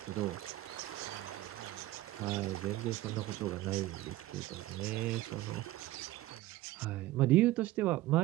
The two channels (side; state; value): left; quieter; 16.6 dB